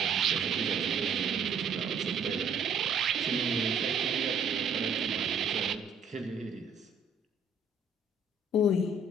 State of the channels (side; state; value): left; quieter; 3.9 dB